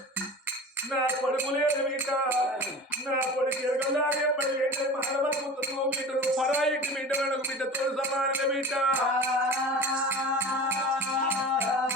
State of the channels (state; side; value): normal; both; correlation 0.35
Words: నా కొడుకు లేదు బిడ్డ, నా కొడుకు ఎరగలాగే పడి మానవత్వం బిడ్డను పరాయికి బిడ్డ వెనక బిడ్డతో సమాన బిడ్డ.